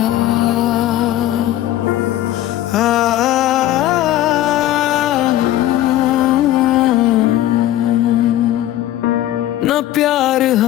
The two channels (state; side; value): quieter; right; 13.7 dB